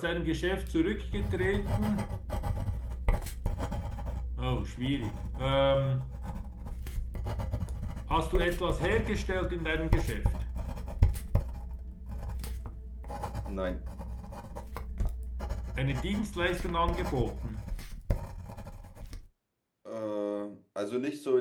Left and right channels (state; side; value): identical; both; correlation 1.00